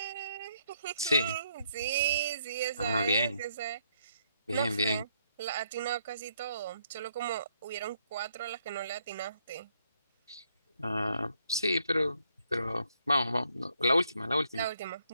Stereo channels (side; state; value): both; inverted; correlation -0.72